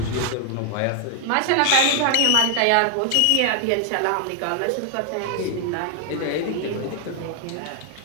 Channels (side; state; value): both; different; correlation 0.00